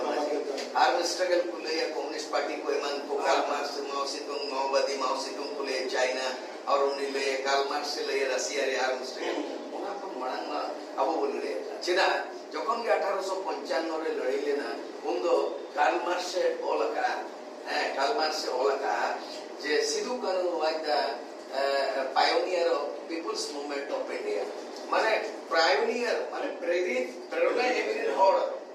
माजे आर्म स्ट्रगल को ले कम्युनिस्ट पार्टी को ईमान को कार्ल मार्क्स माओ सेतुंग माओवादी माओ सेतुंग को ले चाइना और उन्हें ले कार्ल मार्क्स से ले रशिया रे आर्म स्ट्रगल उना को मणंगा अब बोले चेदा যখন 1855 রে লড়াই লেনা উন্দো কার্ল মার্কসে ওলাকা কার্ল মার্কসে ওলাকা যে Sidhu Kanu was the pioneer of peoples movement of India মানে পায়োনিয়ার মানে প্রেরণা এমনি হড়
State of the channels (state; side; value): identical; both; correlation 1.00